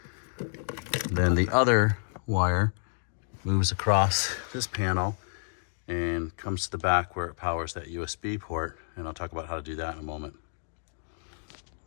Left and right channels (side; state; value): right; silent; digital silence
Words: Then the other wire moves across this panel and comes to the back where it powers that USB port, and I'll talk about how to do that in a moment.